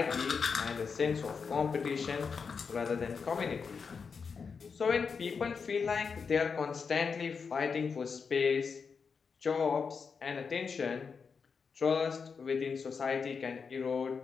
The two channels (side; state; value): right; quieter; 5.6 dB